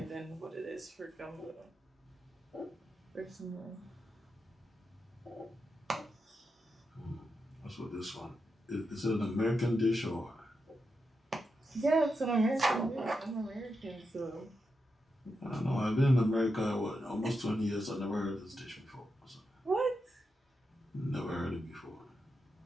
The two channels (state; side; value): normal; both; correlation 0.86